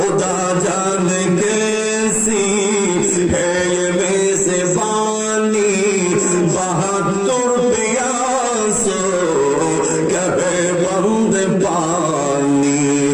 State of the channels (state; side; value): identical; both; correlation 1.00